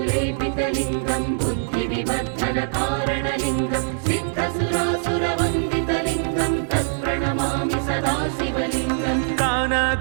बुद्धिविवर्धनकारणलिङ्गं सिद्धसुरासुरवन्दितलिङ्गं तत्प्रणमामि सदा शिवलिङ्गम्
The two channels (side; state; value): left; silent; digital silence